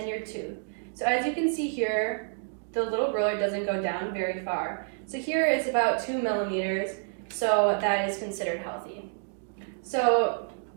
your tooth. So as you can see here, the little ruler doesn't go down very far. So here it's about 2 millimeters, so that is considered healthy. So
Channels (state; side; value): silent; left; digital silence